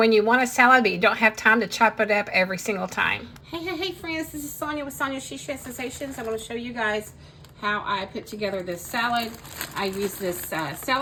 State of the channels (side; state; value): both; identical; correlation 1.00